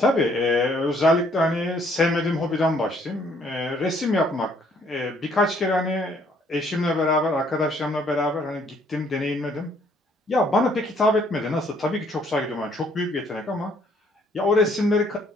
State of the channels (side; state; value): both; normal; correlation 0.64